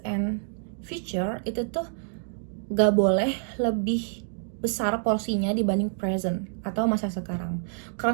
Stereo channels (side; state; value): left; silent; digital silence